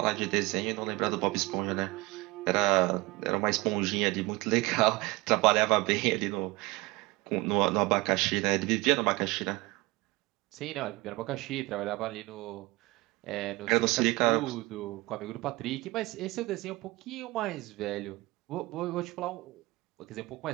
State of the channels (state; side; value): quieter; left; 22.4 dB